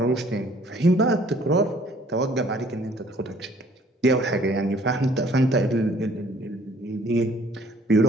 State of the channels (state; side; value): normal; both; correlation 0.58